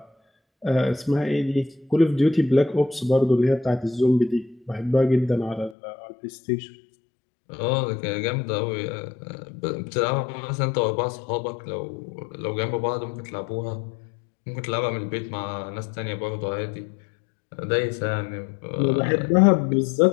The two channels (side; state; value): right; drops out; at 5.8 s